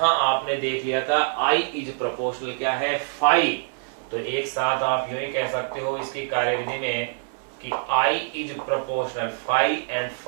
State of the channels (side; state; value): left; silent; digital silence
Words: आपने देख लिया था आई इज प्रोपोर्शनल क्या है, फाई। तो एक साथ आप यूं ही कह सकते हो इसकी कार्यविधि में कि I is proportional phi and